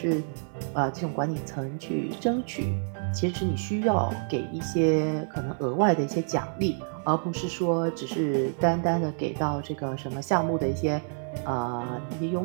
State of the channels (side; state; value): left; silent; 59 dB below the other